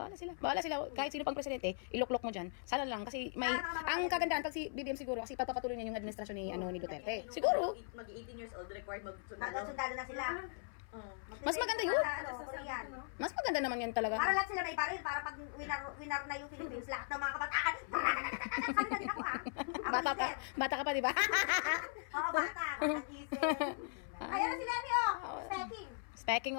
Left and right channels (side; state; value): right; silent; 52 dB below the other